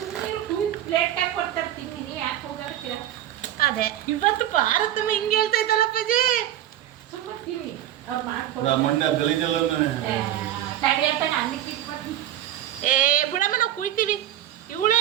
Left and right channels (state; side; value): quieter; left; 12.3 dB